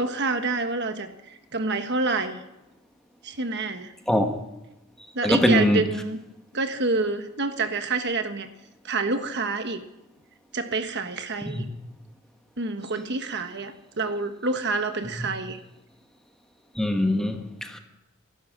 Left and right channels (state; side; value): normal; both; correlation 0.41